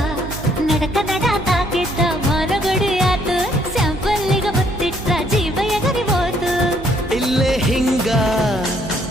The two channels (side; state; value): right; noise; hum, 13 dB below the sound